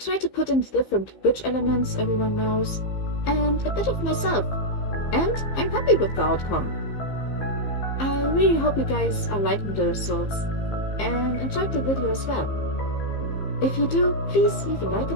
to put in the different witch elements everyone knows, and a bit of myself, and I'm happy with the outcome. I really hope you guys are liking the results and enjoyed the video as well. If you do, please leave a like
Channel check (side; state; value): right; late; 15 ms